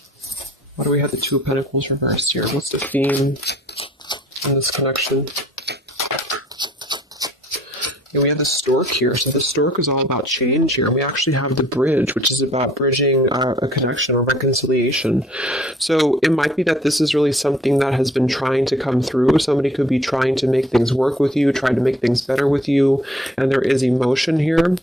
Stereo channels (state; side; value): normal; both; correlation 0.57